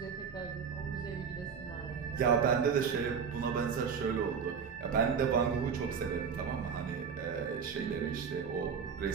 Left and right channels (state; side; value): quieter; left; 6.5 dB